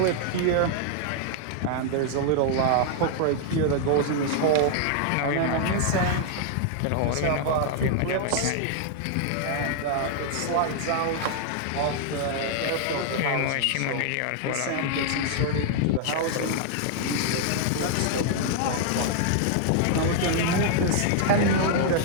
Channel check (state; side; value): different; both; correlation -0.01